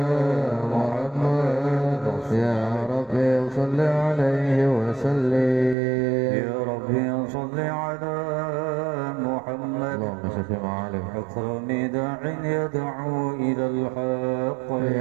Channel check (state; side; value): drops out; left; at 5.8 s